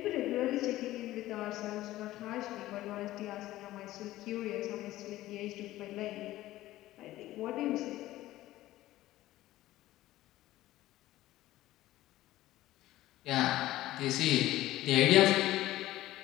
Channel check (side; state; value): right; quieter; 15.7 dB